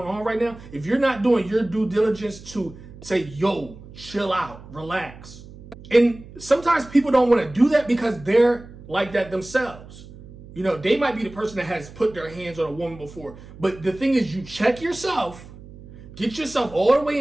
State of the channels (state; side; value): noise; right; hum, 18 dB below the sound